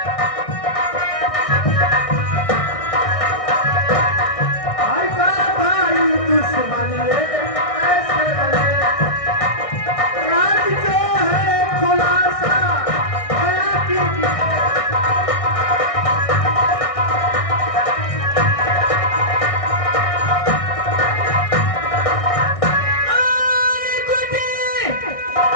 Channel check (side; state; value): right; late; 1.6 ms